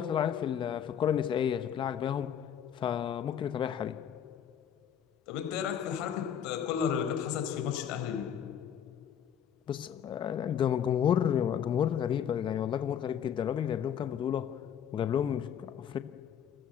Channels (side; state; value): right; quieter; 8.8 dB